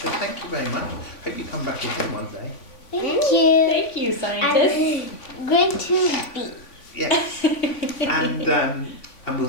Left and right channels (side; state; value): right; late; 3.5 ms